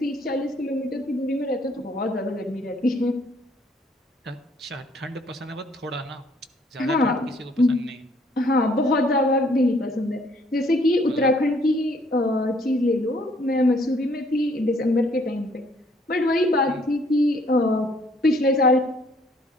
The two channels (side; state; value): both; normal; correlation 0.63